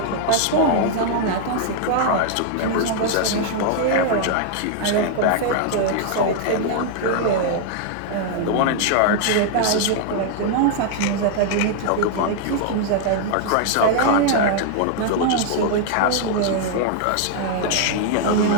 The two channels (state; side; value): different; both; correlation 0.00